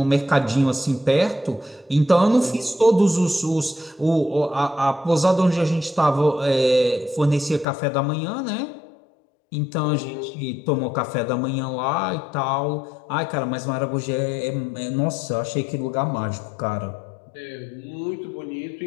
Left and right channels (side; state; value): right; drops out; at 7.7 s